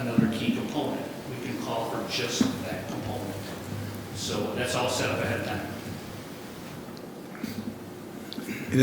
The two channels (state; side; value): identical; both; correlation 1.00